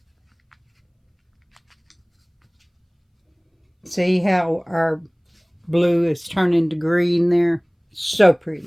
See how our blue is turning to green there? So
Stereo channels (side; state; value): both; identical; correlation 1.00